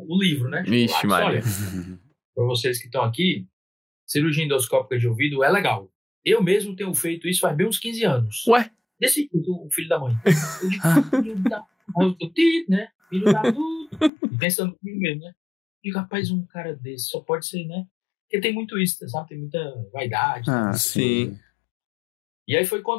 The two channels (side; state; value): right; drops out; at 14.1 s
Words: livro, né? Vixe, Maria. Olha, para vocês que estão aqui, cirurgia endoscópica de ouvido é legal. Eu mesmo tenho feito isso faz bem uns 15 anos. Ué? Desse o filho da mãe. Eu digo, né? Filho da tudo. Pensando comigo mesmo, né? Eu digo, rapaz, um cara desse só pode ser, né? Porque tem muito isso, sabe? Tem muita vaidade. Sim. E aí foi